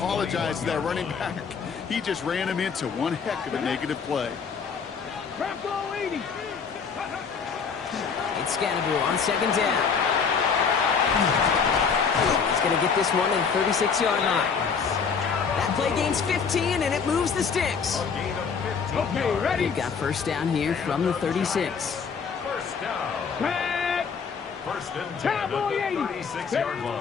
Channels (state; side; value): quieter; right; 6.0 dB